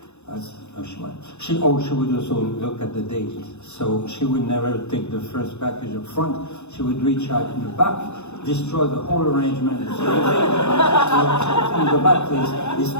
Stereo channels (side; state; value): right; late; 0.82 ms